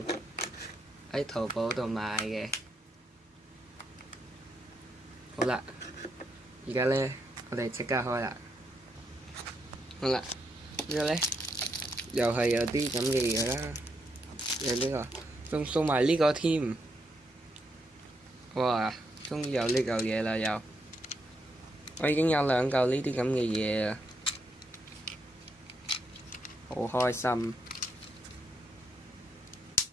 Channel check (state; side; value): normal; both; correlation 0.79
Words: 喺淘寶度買嘅。好啦，而家咧我哋即刻開啦。好啦，呢個咧又係有啲咁嘅嘢啦，有呢個，仲送埋呢個添。哇！終於有呢嚿嘢啦又，我已經有2嚿呢啲咁嘅嘢啦，好開心。